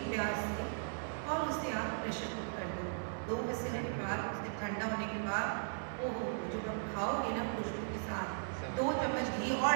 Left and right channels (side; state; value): left; silent; 53 dB below the other